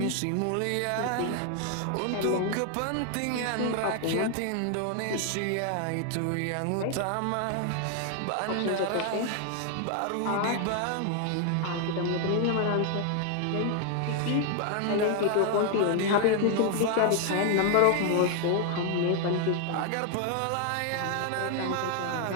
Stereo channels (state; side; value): different; both; correlation 0.00